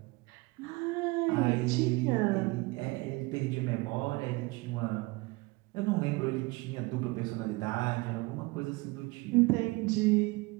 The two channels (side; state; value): left; quieter; 24.0 dB